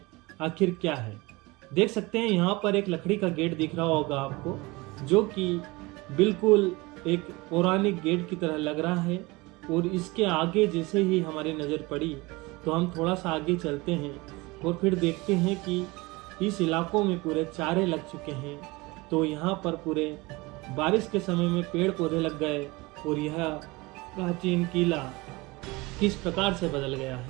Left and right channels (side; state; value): left; quieter; 23.3 dB